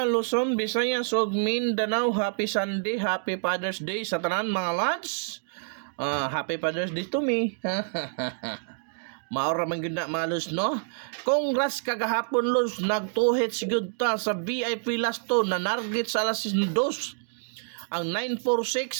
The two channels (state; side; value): silent; left; digital silence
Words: Luzon, Visayas ug Mindanao. Happy Sunday, Happy Father's Day sa tanan mga lads. Happy Father's Day to me. Maura man gyud na malos no. Congrats kagahapon Luz, nagtuhit sigud ta sa VIP last to na narget sa alas 2. Ang